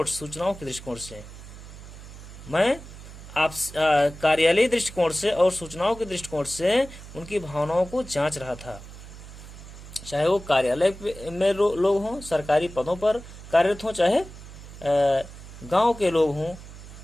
सूचनाओं के दृष्टिकोण से, मैं आप कार्यालयी दृष्टिकोण से और सूचनाओं के दृष्टिकोण से उनकी भावनाओं को जांच रहा था। चाहे वो कार्यालय में लोग हों, सरकारी पदों पर कार्यरत हों, चाहे गांव के लोग हों,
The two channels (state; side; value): noise; right; hum, 15 dB below the sound